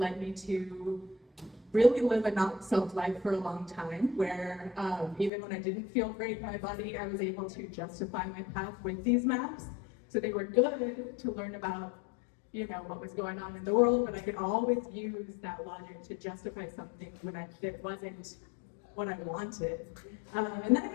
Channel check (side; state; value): right; drops out; at 5.3 s